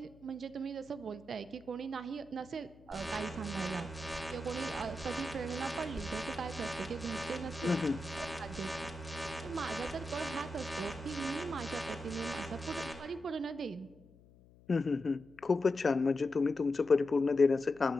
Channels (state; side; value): noise; left; hum, 25 dB below the sound